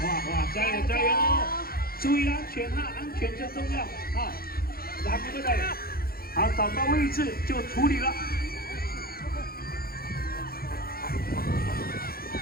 加油加油！注意安全哈，安全最重要啊！来，对不对？好，找到位置就处理了。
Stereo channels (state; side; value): late; right; 0.44 ms